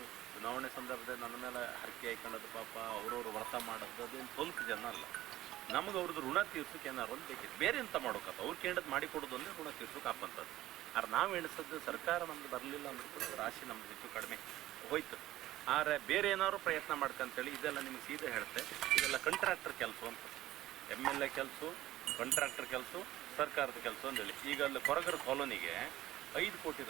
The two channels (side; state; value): left; quieter; 15.0 dB